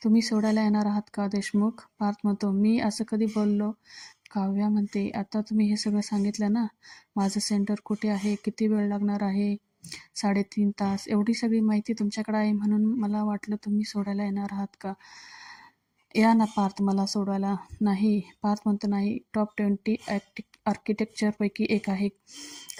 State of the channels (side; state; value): both; identical; correlation 1.00